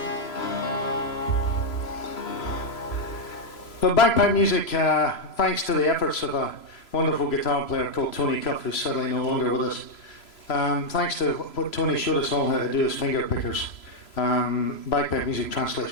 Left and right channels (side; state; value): right; late; 3.0 ms